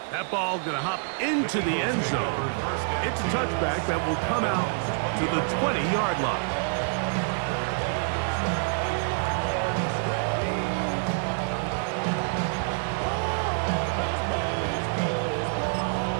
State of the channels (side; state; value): left; silent; 60 dB below the other